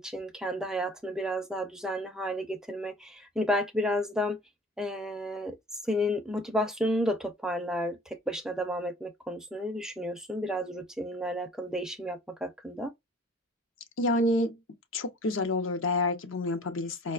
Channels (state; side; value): normal; both; correlation 0.49